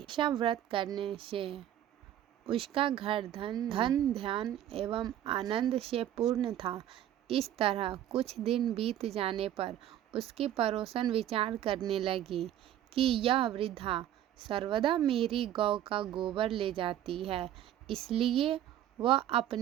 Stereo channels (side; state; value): left; quieter; 11.6 dB